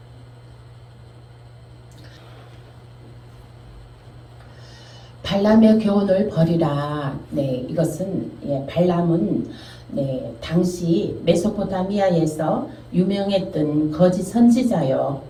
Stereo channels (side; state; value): both; identical; correlation 1.00